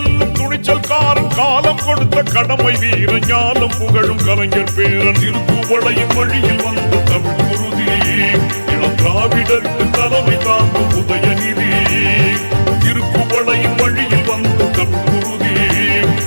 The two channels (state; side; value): inverted; both; correlation -1.00